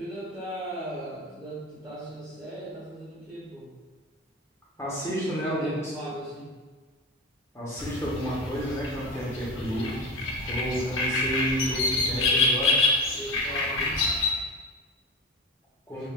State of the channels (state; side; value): normal; both; correlation 0.23